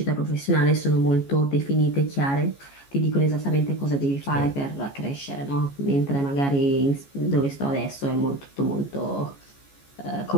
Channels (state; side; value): late; right; 14 ms